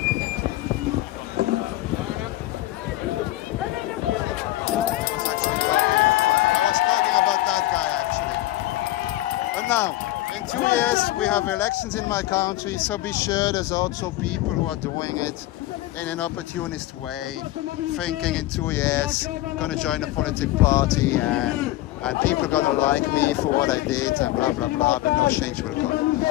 About that guy actually. But now, in 2 years we have elections in my country, so be sure there's also people who are doing it in an opportunist way, thinking in 2 years gonna join a political party and people gonna like me for what I did and blah blah blah, but no change will come.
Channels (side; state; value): right; quieter; 16.3 dB